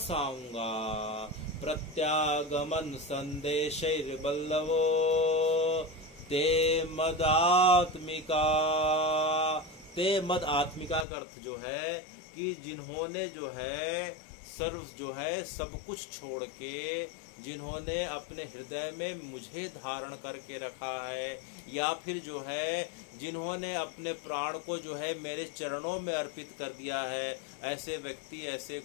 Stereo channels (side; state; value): right; drops out; at 11.1 s